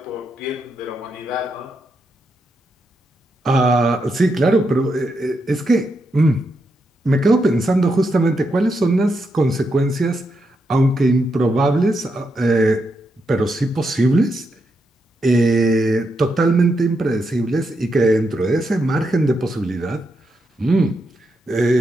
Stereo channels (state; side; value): normal; both; correlation 0.83